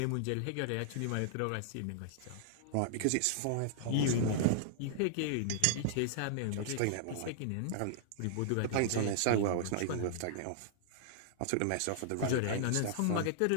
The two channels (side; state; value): both; different; correlation -0.01